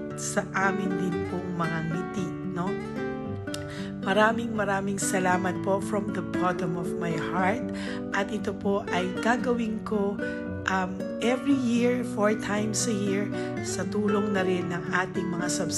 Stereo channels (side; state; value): both; identical; correlation 1.00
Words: sa amin din pong mga ngiti, no? Maraming salamat po from the bottom of my heart, at ito po ay gagawin ko every year, 4 times a year, sa tulong na rin ng ating mga